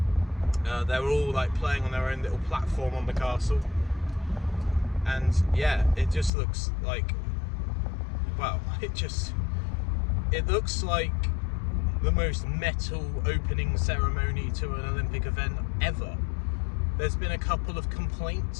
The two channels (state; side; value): drops out; right; at 6.3 s